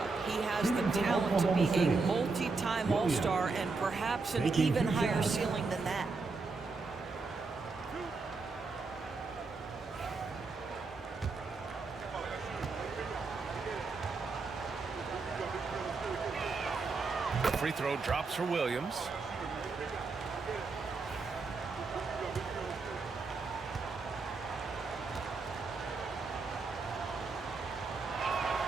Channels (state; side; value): quieter; left; 4.1 dB